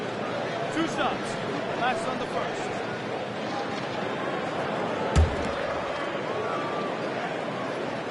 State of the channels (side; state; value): both; identical; correlation 1.00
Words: 2 shots. Last on the first.